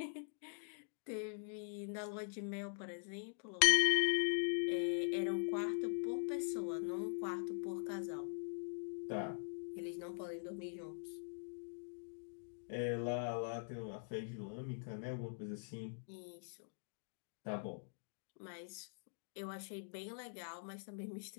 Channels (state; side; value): silent; right; digital silence